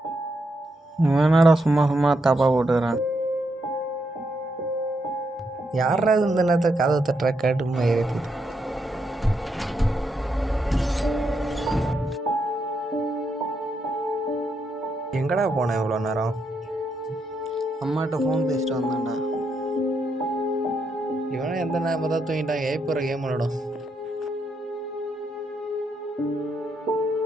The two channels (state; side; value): normal; both; correlation 0.80